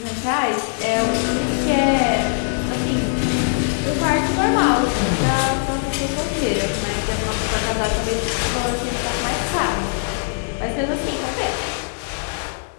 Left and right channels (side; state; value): right; silent; digital silence